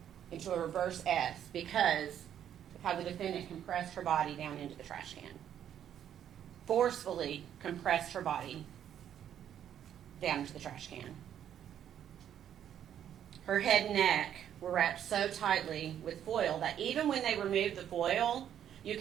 into a reverse S because of how the defendant compressed her body down into the trash can. Forcefully compressed her body down into the trash can. Her head and neck were wrapped so tightly with foil that even when they removed the foil, you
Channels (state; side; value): quieter; left; 9.9 dB